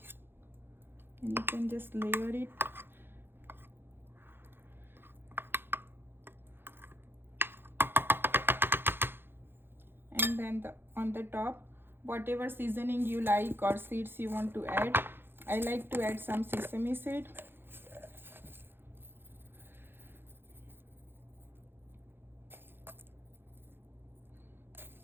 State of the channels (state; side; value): late; left; 0.10 ms